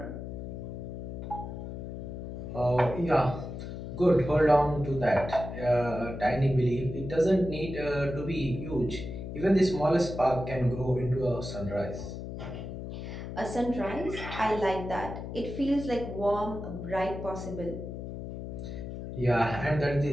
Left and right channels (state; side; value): noise; left; hum, 8 dB below the sound